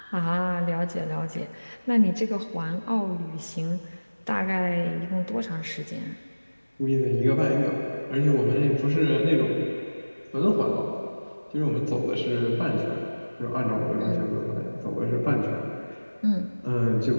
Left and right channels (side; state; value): both; inverted; correlation -1.00